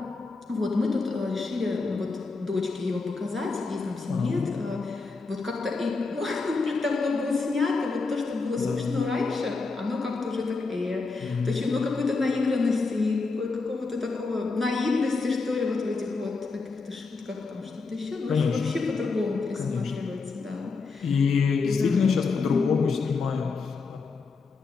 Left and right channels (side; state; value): right; quieter; 4.2 dB